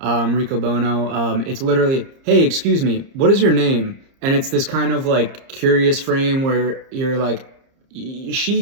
Riccobono. It's literally, hey, excuse me, what is your name? And it's this kind of like curious frame where you're like,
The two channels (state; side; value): late; left; 30 ms